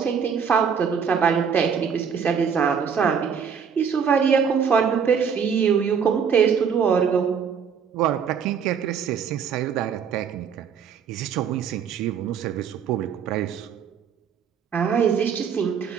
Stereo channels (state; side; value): quieter; left; 6.9 dB